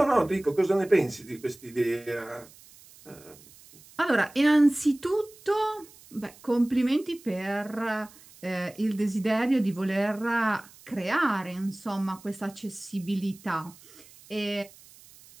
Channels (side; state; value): right; noise; hiss, 23 dB below the sound